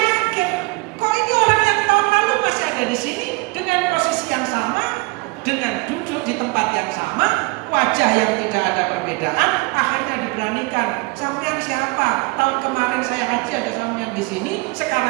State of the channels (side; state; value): left; quieter; 25.8 dB